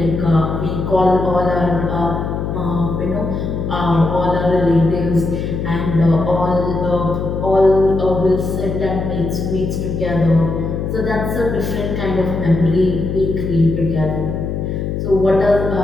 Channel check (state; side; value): noise; left; hum, 3 dB below the sound